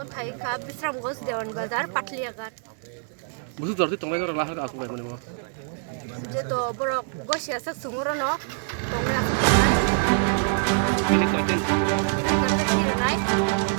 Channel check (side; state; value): left; silent; 62 dB below the other